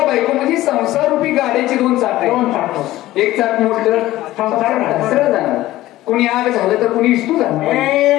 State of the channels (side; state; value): right; quieter; 15.9 dB